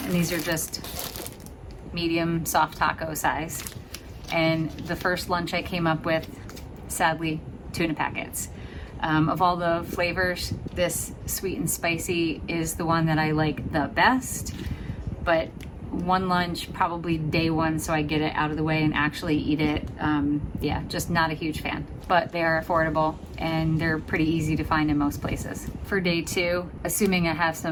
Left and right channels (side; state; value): both; identical; correlation 1.00